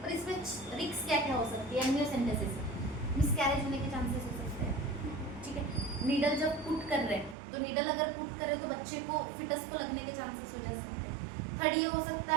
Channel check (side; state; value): left; drops out; at 7.4 s